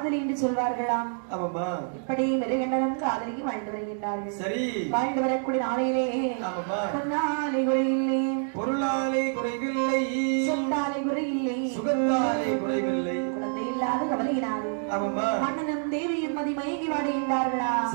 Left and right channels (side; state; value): left; silent; 60 dB below the other